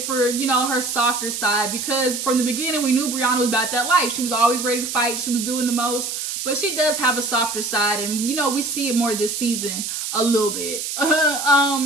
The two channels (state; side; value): noise; right; hiss, 4 dB below the sound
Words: for, you know, her softer side, because from the beginning we knew Brianna was about that life. She was always ready to fight. She was doing the most, but she does have a softer side, and, you know, we see it more this season a little bit.